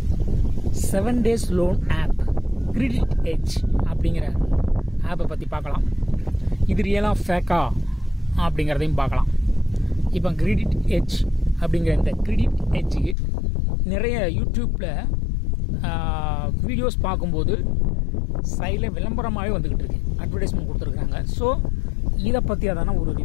7 days loan app credit edge அப்படிங்கிற ஆப்பை பற்றி பார்க்கலாம். இது ரியலாக ஃபேக்கா அப்படிங்கிறதையும் பார்க்கலாம். இப்போ கிரெடிட் எட்ஜ் அப்படிங்கிற இந்த கிரெடிட் எட்ஜுக்கு நிறைய யூடியூப்பில் வீடியோஸ் பார்க்கும்போது சைடில் விளம்பரமாகவே வந்துக்கிட்டு இருக்கு, அட்வர்டைஸ்மெண்ட் கொடுத்துருக்காங்க. ஸோ இதை பற்றி அதான ஒரு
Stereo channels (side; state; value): right; drops out; at 13.2 s